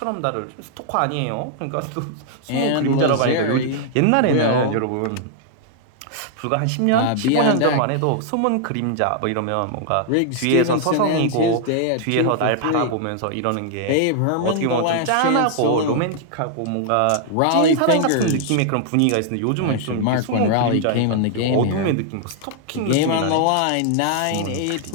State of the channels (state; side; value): different; both; correlation -0.01